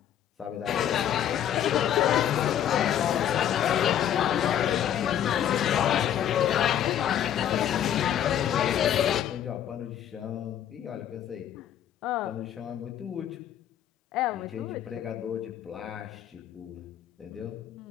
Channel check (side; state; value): right; quieter; 10.3 dB